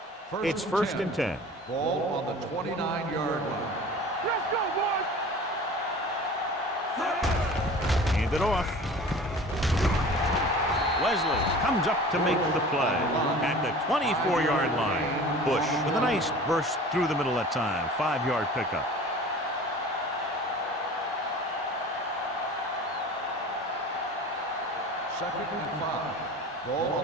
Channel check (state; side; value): normal; both; correlation 0.41